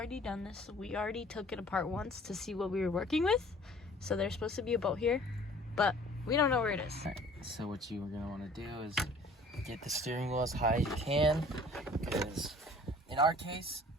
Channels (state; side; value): normal; both; correlation 0.51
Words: done this. We already took it apart once to see what we were working with. So there's supposed to be a bolt here, but we don't know where it is. All right, so what you are gonna want to do is get the steering wheel as high as you can, because in our case,